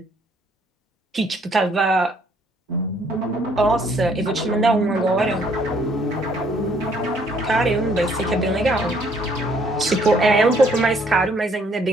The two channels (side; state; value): both; normal; correlation 0.65